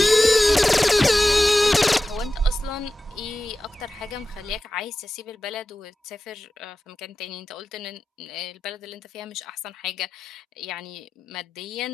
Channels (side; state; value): both; normal; correlation 0.94